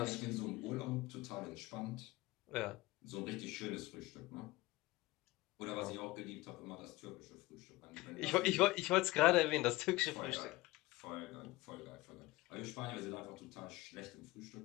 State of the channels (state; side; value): quieter; right; 19.8 dB